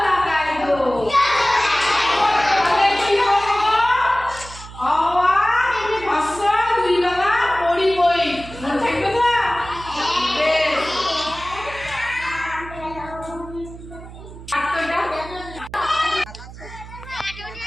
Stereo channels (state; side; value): noise; right; hum, 15 dB below the sound